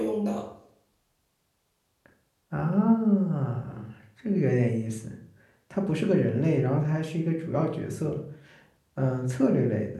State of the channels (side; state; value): both; identical; correlation 1.00